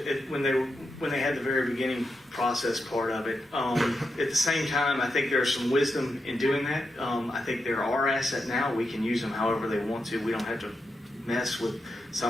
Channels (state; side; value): normal; both; correlation 0.86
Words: when they had the very beginning process part of it. At the same time, I think there's some wisdom in doing that. I think they're our asset now. We can use them however they want to. We don't have to mess with